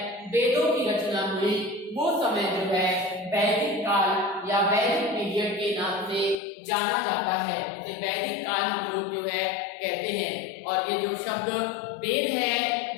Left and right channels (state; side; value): drops out; right; at 6.4 s